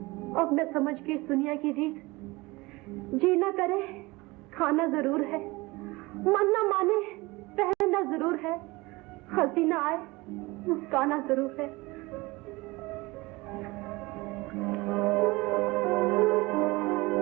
अब मैं समझ के इस दुनिया की रीत, जीना करे खाना जरूर है, मन न माने पहनना जरूर है, हंसी न आए मुस्काना जरूर है।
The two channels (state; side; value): quieter; left; 22.6 dB